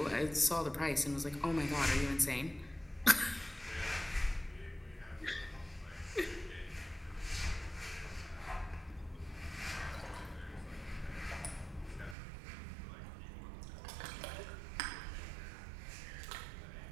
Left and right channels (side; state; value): left; drops out; at 12.2 s